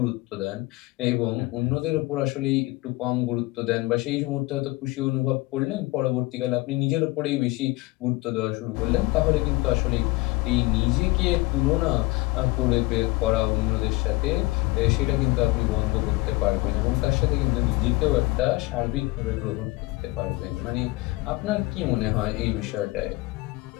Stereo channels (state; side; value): quieter; right; 21.7 dB